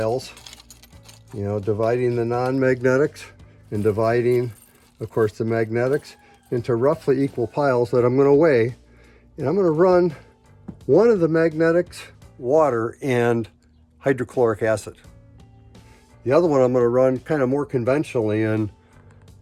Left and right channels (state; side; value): identical; both; correlation 1.00